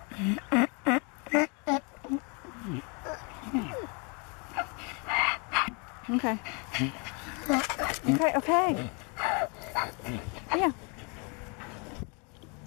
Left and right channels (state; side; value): quieter; right; 33.6 dB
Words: Okay. Okay. Yeah.